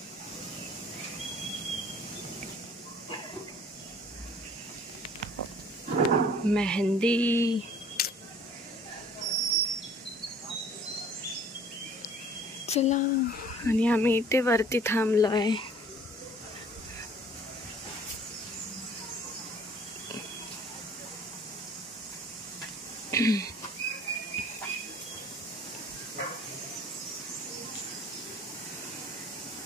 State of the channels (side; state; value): both; normal; correlation 0.53